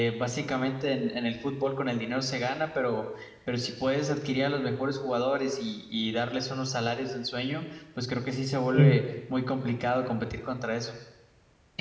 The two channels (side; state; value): both; identical; correlation 1.00